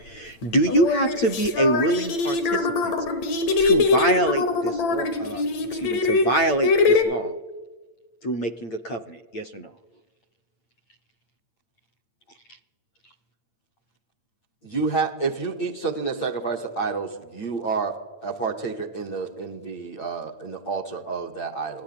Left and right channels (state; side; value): late; right; 8.8 ms